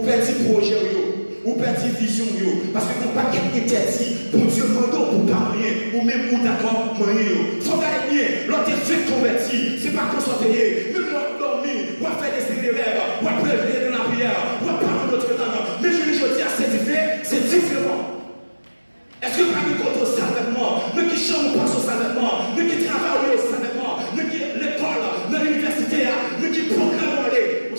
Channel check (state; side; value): inverted; both; correlation -1.00